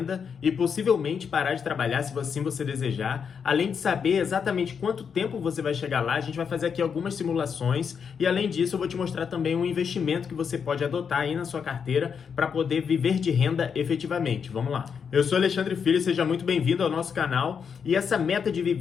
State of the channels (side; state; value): right; quieter; 6.7 dB